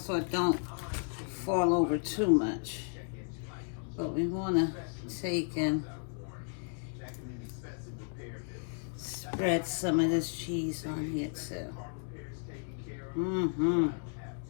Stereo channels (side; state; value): right; silent; 55 dB below the other